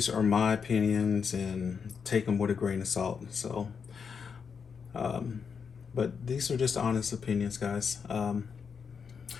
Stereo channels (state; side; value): quieter; right; 6.2 dB